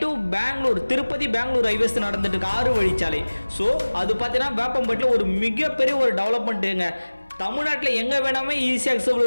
டு பெங்களூர், திருப்பதி பெங்களூர் ஹைவேஸ் நடந்துட்டு இருக்கு 6 வழிச்சாலை. ஸோ அது பார்த்தீங்கன்னா வேப்பம்பட்டில் ஒரு மிகப்பெரிய ஒரு டெவலப்மெண்ட்டுங்க. தமிழ்நாட்டில் எங்கே வேணாமே ஈஸியாக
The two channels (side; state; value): both; inverted; correlation -1.00